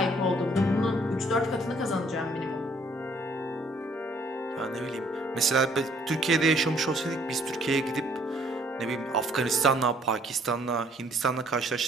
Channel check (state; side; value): normal; both; correlation 0.62